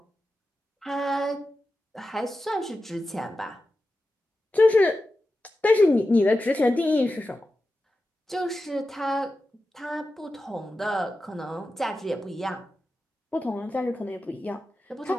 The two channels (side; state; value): both; normal; correlation 0.92